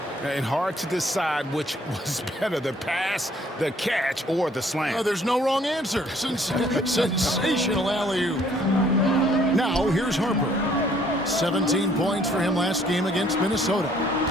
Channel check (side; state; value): both; normal; correlation 0.62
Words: And hard to decide which was better, the pass, the catch, or the slam. Oh, there's no wrong answer. Sensational alley-oop. Now, here's Harper. 17 points for him last game against Minnesota.